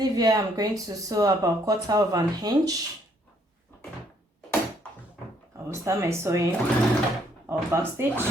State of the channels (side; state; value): both; normal; correlation 0.68